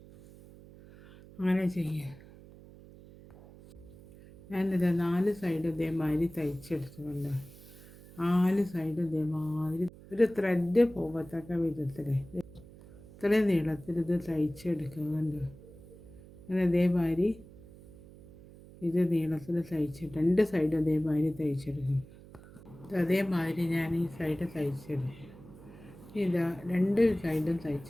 അങ്ങനെ ചെയ്യുക. ഞാനിത് 4 സൈഡ് ഇതേമാതിരി തയ്ച്ചെടുത്തുകൊണ്ട് 4 സൈഡ് ഇതേമാതിരി ഒരു ത്രെഡ് പോകത്തക്ക വിധത്തിൽ ഇത്രയും നീളത്തിൽ ഇത് തയ്ച്ചെടുക്കുന്നുണ്ട്. അങ്ങനെ ഇതേമാതിരി ഇത് നീളത്തിൽ തയ്ച്ചിട്ട് 2 സൈഡ് ഇതേമാതിരി തയ്ച്ചെടുക്കും. അതേമാതിരി ഞാൻ ഈ സൈഡ് തയ്ച്ചെടുക്കും. ഇതാ 2 സൈഡും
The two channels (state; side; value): noise; right; hum, 20 dB below the sound